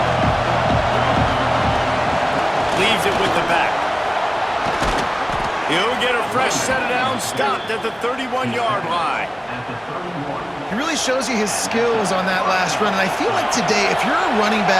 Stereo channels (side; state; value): both; identical; correlation 1.00